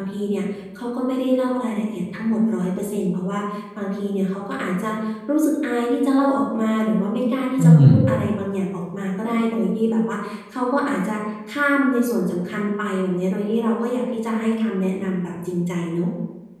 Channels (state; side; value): identical; both; correlation 1.00